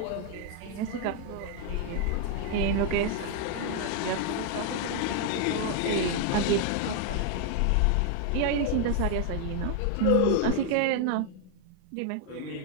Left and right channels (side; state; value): both; different; correlation 0.00